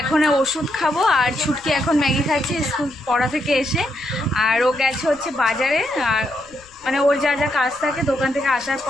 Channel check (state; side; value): noise; left; rumble, 28 dB below the sound